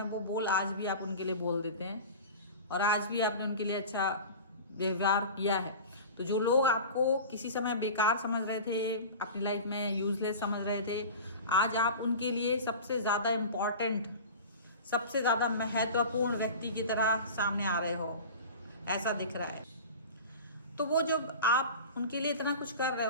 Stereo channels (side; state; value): both; inverted; correlation -0.34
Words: वो बोल आज भी आप उनके लिए बोल देते हैं, और आज भी आपने उनके लिए अच्छा व्यवहार किया है। तो जो लोग आपको किसी समय बेकार समझ रहे थे, अपनी लाइफ में यूजलेस समझ रहे थे, आज आप उनके लिए सबसे ज़्यादा इम्पॉर्टेंट, सबसे ज़्यादा महत्वपूर्ण व्यक्ति की तरह सामने आ रहे हो, ऐसा दिख रहा है। तो वो जब आप उनके लिए इतना कुछ कर रहे